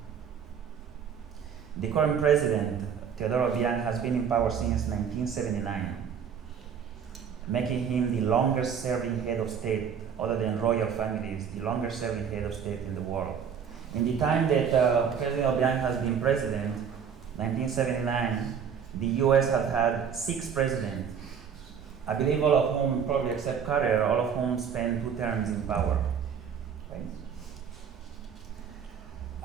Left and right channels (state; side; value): quieter; left; 7.4 dB